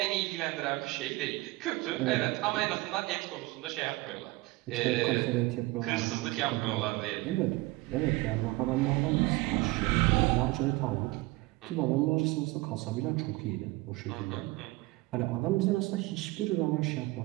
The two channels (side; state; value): left; quieter; 21.3 dB